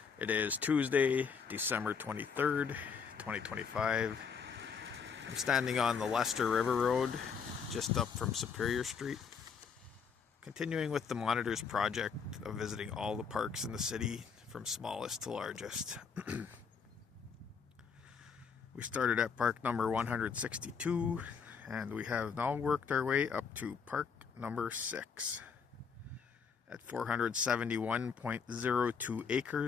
It is Tuesday, December 23rd, 2025. I'm standing on the Leicester River Road, just up from Superior Street. Continuing with the Monitors project of visiting all the parks in the city, from smallest to largest. We started at park number 162, and we have now worked our way up to park number 6. At 471.02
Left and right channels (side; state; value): right; quieter; 6.1 dB